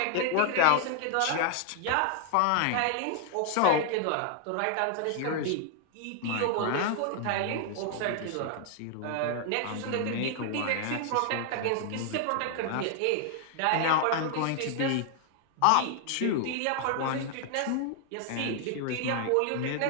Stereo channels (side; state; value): both; different; correlation 0.00